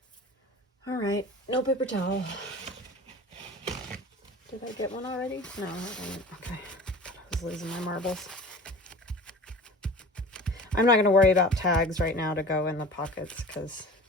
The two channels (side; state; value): both; normal; correlation 0.39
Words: All right, no paper towel. Did I get one already? No, I didn't. Okay, I was losing my marbles. I'm not going to worry about tags right now to go in the pockets because,